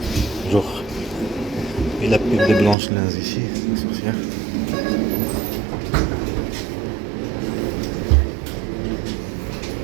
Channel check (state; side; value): drops out; left; at 2.8 s